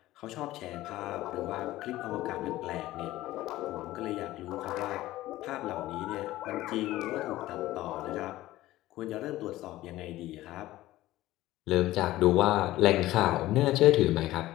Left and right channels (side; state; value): right; quieter; 16.2 dB